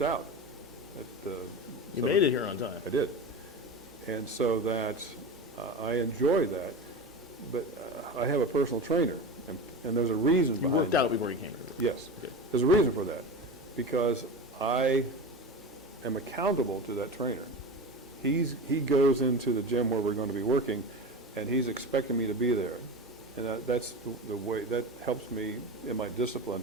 out. You made it here on time. I did. And so that I enjoy that, but I have a personal trainer, and there's a reason behind it. You worked out before you came here? Yes. Good. There's a reason for that, because I am accountable to that trainer. He goes into the gym where we're going to be working, and he's expecting me to be there. And that's the way, that helps me in my discipline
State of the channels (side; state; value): both; normal; correlation 0.27